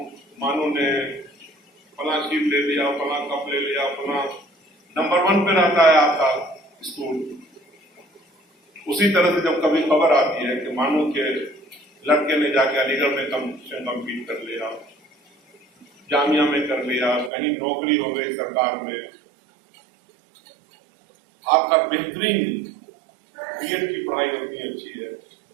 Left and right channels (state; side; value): drops out; left; at 17.3 s